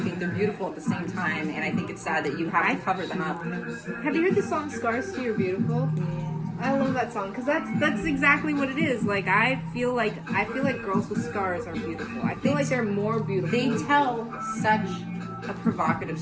they're beautiful at the same time. And I think it's sad that you have to cover them up. Have you heard the song "Scars to You're Beautiful"? I love that song because that's exactly what it is. Like I feel like girls with scars are beautiful. I feel like they're more beautiful. They tell such a provocative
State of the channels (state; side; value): identical; both; correlation 1.00